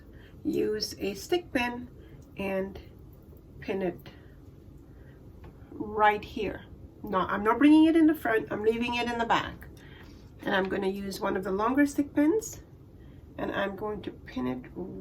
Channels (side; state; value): both; identical; correlation 1.00